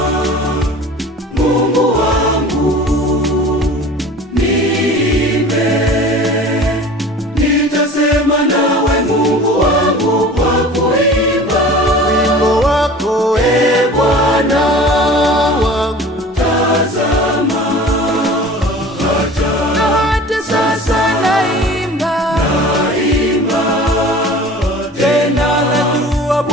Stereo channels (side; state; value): both; normal; correlation 0.41